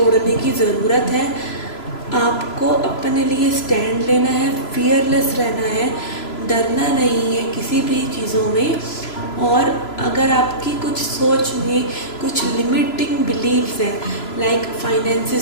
की ज़रूरत है। आपको अपने लिए स्टैंड लेना है, फियरलेस रहना है, डरना नहीं है किसी भी चीज़ों में। और अगर आपकी कुछ सोच में कुछ लिमिटिंग बिलीव्स हैं, लाइक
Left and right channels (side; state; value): right; late; 3.0 ms